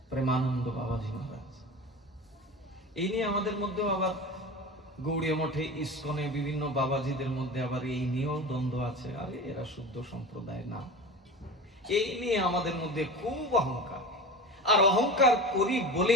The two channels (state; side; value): normal; both; correlation 0.31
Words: প্রেমানন্দ বাবাজি মহারাজ। এই নিয়ে আমাদের মধ্যেও আবার গৌড়ীয় মঠে, ইস্কনে, বিভিন্ন বাবাজিদের মধ্যে আবার এই নিয়েও দ্বন্দ্ব আছে। আরে এরা শুদ্ধ সম্প্রদায় না, এই নিয়ে আমাদের মধ্যে খুব অহংকার। আর অহংকার করি